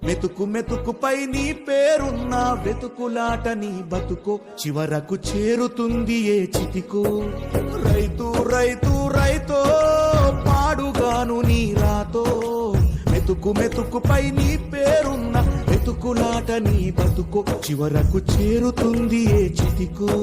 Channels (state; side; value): identical; both; correlation 1.00